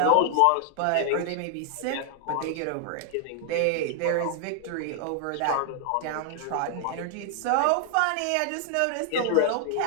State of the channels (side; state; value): both; different; correlation 0.00